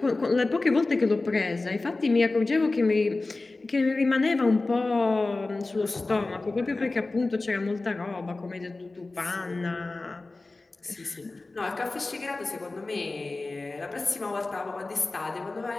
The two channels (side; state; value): right; quieter; 3.3 dB